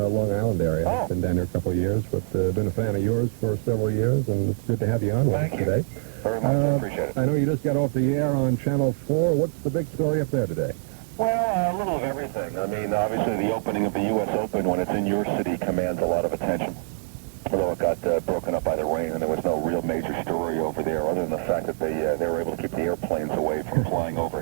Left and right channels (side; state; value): left; silent; digital silence